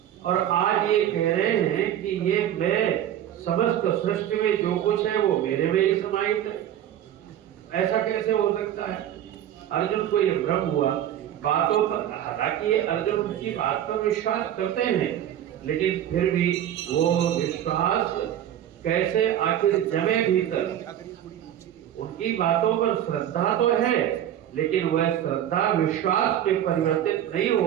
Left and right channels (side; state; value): left; quieter; 11.1 dB